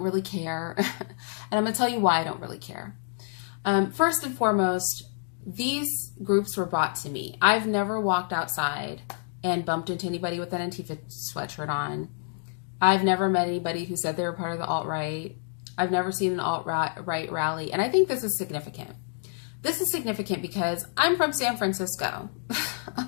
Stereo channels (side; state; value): right; silent; 56 dB below the other